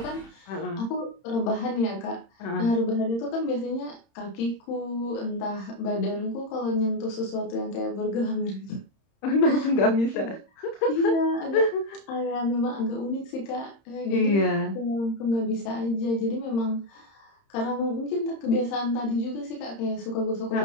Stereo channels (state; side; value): late; right; 30 ms